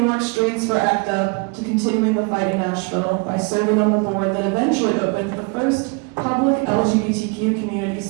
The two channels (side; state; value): left; quieter; 31.8 dB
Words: York streets for ACT UP to continuing the fight in Nashville by serving on the board that eventually opened the first public LGBTQ community